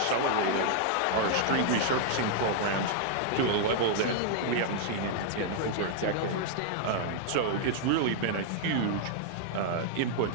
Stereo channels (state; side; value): different; both; correlation -0.01